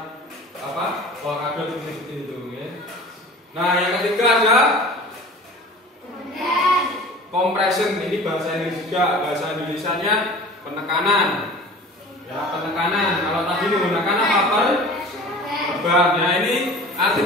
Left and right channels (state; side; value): normal; both; correlation 0.41